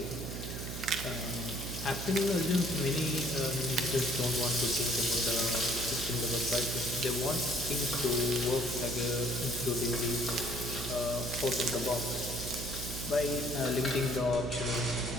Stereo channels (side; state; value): right; noise; hum, 7 dB below the sound